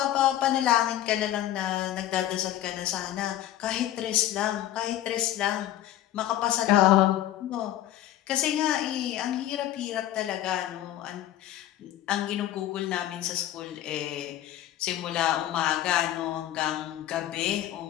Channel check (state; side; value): quieter; right; 12.9 dB